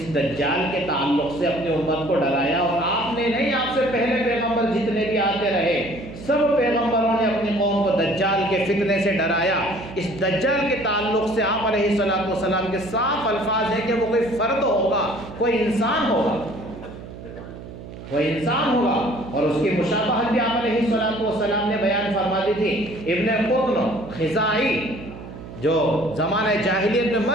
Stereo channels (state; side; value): noise; right; hum, 13 dB below the sound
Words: دجال کے تعلق سے اپنی امت کو ڈرایا، اور آپ نے نہیں، آپ سے پہلے پیغمبر جتنے بھی آتے رہے سب پیغمبروں نے اپنی قوم کو دجال کے فتنے سے ڈرایا۔ اس دجال کے تعلق سے آپ علیہ السلام کے صاف الفاظ ہیں کہ وہ کوئی فرد ہوگا، کوئی انسان ہوگا، کوئی انسان ہوگا، اور اس کی مشابہت بھی آپ علیہ السلام نے بیان فرما دی تھی۔ ابن قطن خزاعی جو زمانہ جاہلیت میں